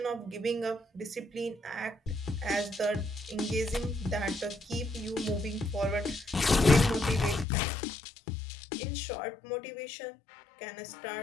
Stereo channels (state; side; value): drops out; right; at 7.5 s